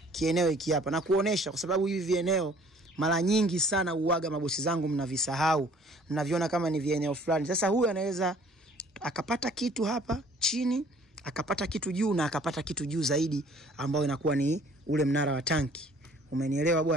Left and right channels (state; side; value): normal; both; correlation 0.55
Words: Kieneo hiki hapa na kuonesha, kwa sababu hivi vieneo mara nyingi sana uaga mabosi zangu mnavisahau. Mnaviona kama ni vieneo fulani. Sasa huyu anaweza akapata kitu hapa chini, akapata kitu juu, na akapata kitu juu zaidi ambao inakuwa ni ule mnara wa tanki. Umenielewa